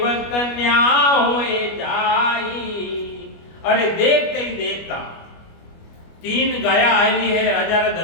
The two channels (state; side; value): late; right; 25 ms